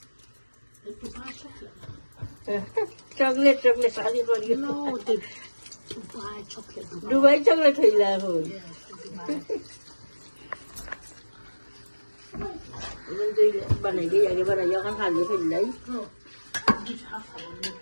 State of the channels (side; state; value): both; inverted; correlation -1.00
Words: চকলেট চকলেট শাদি করি No, the Dubai chocolate. Dubai chocolate হইলা এখন বানাই দিই আগে বানাই এখন খালি ফেললাই। Just have some